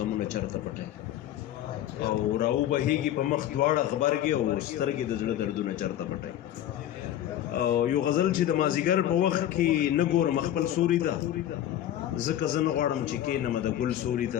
چرته پټي او راو بهیږي په مخ دواړه غبرګي او سترګې د زړه دردونه چرته پټي او یو غزل چې د مازیګر په وخت کې نه ګورم خپل سوري ته ځکه زه نه غواړم چې کښېنم د ګل سوري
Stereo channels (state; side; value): quieter; right; 11.9 dB